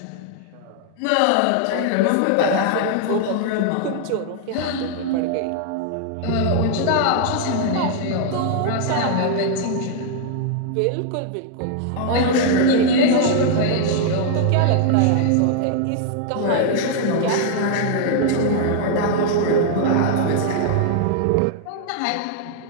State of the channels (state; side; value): different; both; correlation 0.00